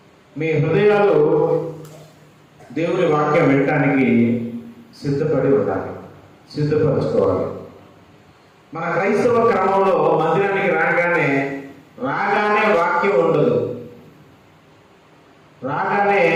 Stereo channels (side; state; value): both; identical; correlation 1.00